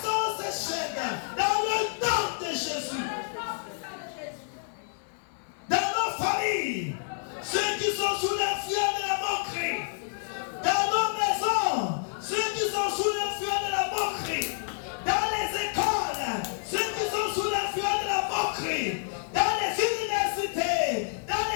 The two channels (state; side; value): silent; right; 59 dB below the other